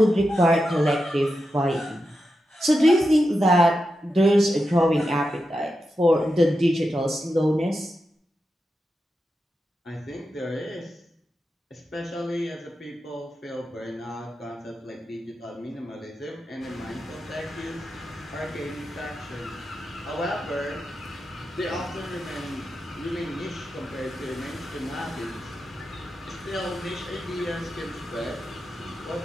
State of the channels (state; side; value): normal; both; correlation 0.89